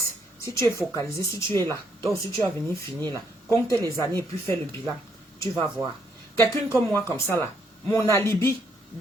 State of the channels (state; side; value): normal; both; correlation 0.72